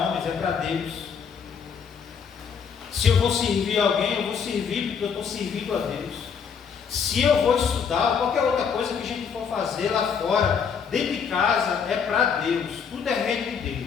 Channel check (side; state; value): right; quieter; 6.6 dB